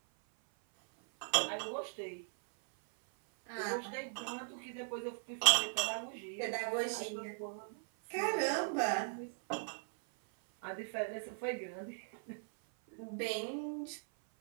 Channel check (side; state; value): left; silent; 52 dB below the other